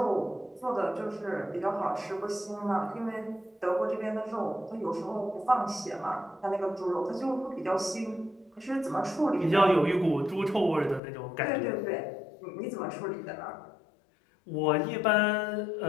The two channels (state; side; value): drops out; right; at 11.0 s